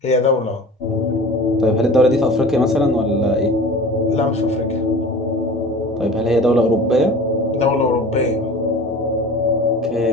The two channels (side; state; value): both; normal; correlation 0.40